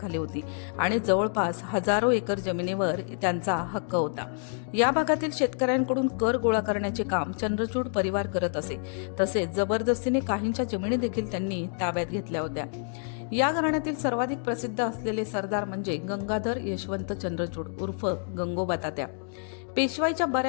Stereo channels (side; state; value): right; silent; 59 dB below the other